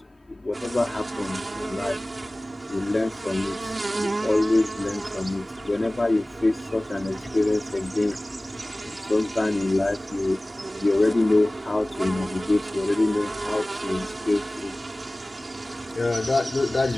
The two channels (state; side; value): normal; both; correlation 0.98